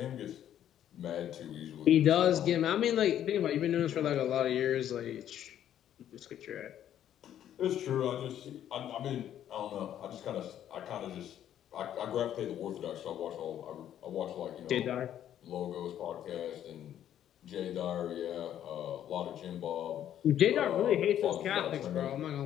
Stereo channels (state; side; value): quieter; right; 10.8 dB